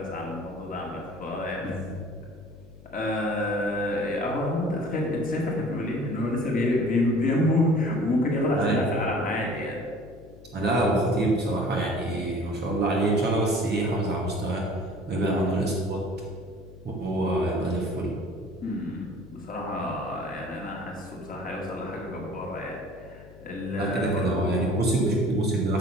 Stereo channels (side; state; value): left; noise; hum, 21 dB below the sound